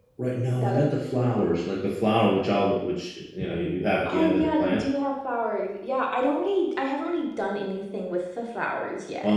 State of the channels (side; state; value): both; identical; correlation 1.00